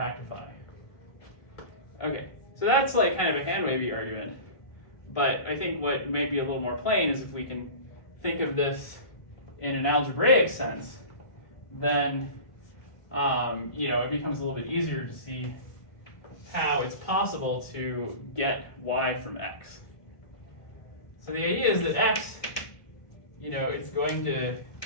Okay, so that's like kind of a hand-wavy argument. But I think what may be a little more plain is if we can think of this in an algebraic sense, then it becomes a little bit easier to see how it's possible to get y from x. So the idea is that x, it's going to,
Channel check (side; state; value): right; late; 1.5 ms